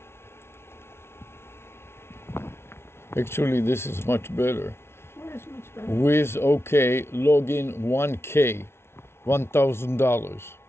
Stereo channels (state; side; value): late; right; 0.12 ms